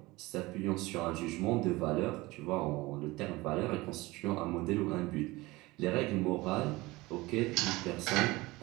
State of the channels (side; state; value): left; quieter; 21.1 dB